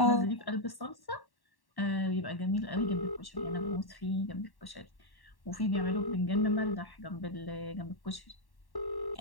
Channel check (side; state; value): right; late; 1.1 ms